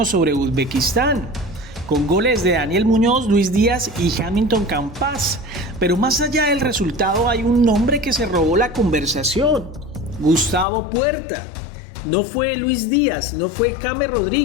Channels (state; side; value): drops out; right; at 10.7 s